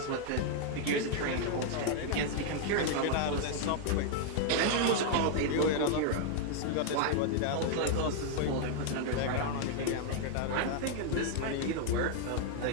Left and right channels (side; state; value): both; different; correlation 0.00